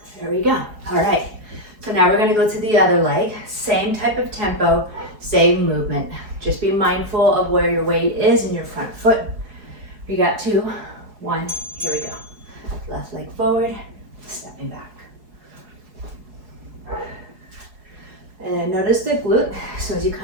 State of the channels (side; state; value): left; late; 4.7 ms